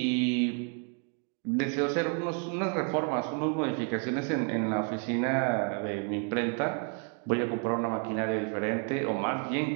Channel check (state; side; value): quieter; left; 38.1 dB